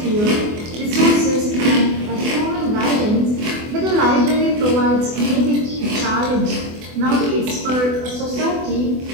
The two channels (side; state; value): left; late; 24 ms